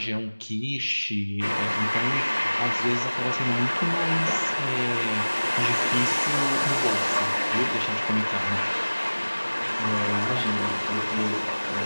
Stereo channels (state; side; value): inverted; both; correlation -1.00